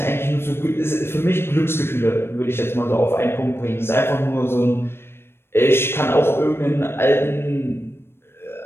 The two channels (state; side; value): late; right; 0.12 ms